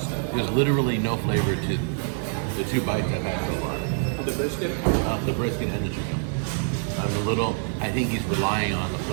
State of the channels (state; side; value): silent; left; digital silence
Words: There's literally no flavor to the 2 bites I've had so far. The brisket? The brisket and the chicken. I think he's relying on the